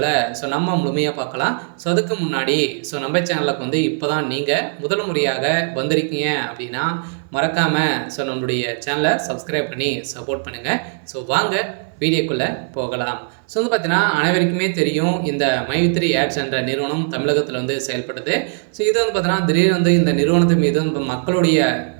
ஸோ நம்ம முழுமையாக பார்க்கலாம். ஸோ அதுக்கு முன்னாடி ஸோ நம்ம சேனலுக்கு இப்போ தான் நீங்கள் முதல் முறையாக வந்திருக்கீங்க அப்படின்னா மறக்காமல் ஸோ நம்மளுடைய சேனலை சப்ஸ்கிரைப் பண்ணி சப்போர்ட் பண்ணுங்கள். ஸோ வாங்க வீடியோக்குள்ளே போகலாம். ஸோ பார்த்தீங்கன்னா அனைவருக்குமே தெரியும் இந்த மைவித்ரி ஆட்ஸ் என்ற நிறுவனம் தமிழகத்தில் செயல்படுது. ஸோ இது பார்த்தீங்கன்னா திடீர்னு இந்த நிறுவனத்தின் மீது மக்களுடைய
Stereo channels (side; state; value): left; silent; 58 dB below the other